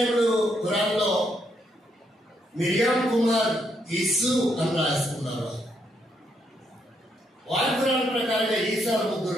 ఖురాన్లో మిరియాం కుమార్ యేసు అని రాసుకున్నారు. వారి ఖురాన్ ప్రకారంగా ఈసాలు 3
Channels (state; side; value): normal; both; correlation 0.76